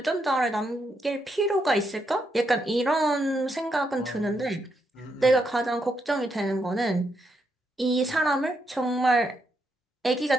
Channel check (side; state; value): both; normal; correlation 0.80